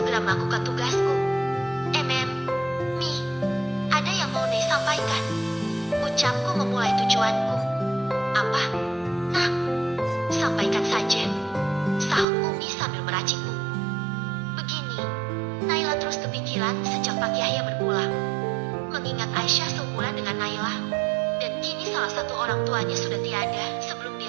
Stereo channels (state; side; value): drops out; left; at 12.2 s